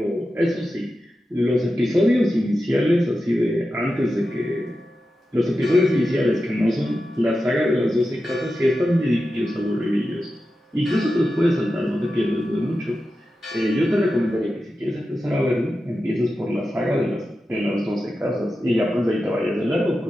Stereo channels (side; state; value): both; normal; correlation 0.91